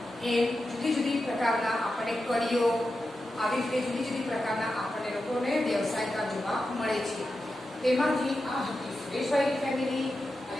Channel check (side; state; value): both; normal; correlation 0.90